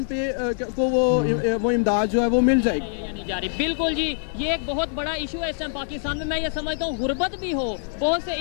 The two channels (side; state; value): right; silent; 63 dB below the other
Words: पे को वो इमदाद जो है वो मिल जाएगी। की जा रही। बिल्कुल जी, ये एक बहुत बड़ा इशू है इस टाइम पाकिस्तान में। मैं ये समझता हूँ गुर्बत भी हो, बहुत से